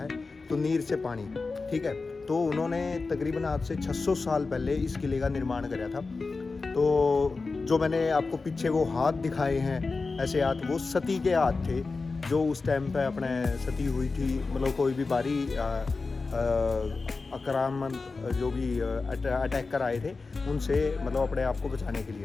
तो नीर से पानी, ठीक है। तो उन्होंने तकरीबन आज से 600 साल पहले इस किले का निर्माण कराया था। तो जो मैंने आपको पीछे वो हाथ दिखाए हैं, ऐसे हाथ, वो सती के हाथ थे जो उस टाइम पे अपने सती हुई थी। मतलब कोई भी बारी आक्रामण जो भी अटैक कर आए थे उनसे, मतलब अपने आप को बचाने के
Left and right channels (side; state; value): right; quieter; 4.0 dB